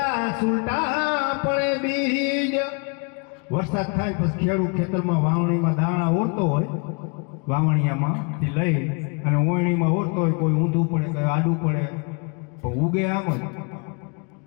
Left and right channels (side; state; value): right; quieter; 34.3 dB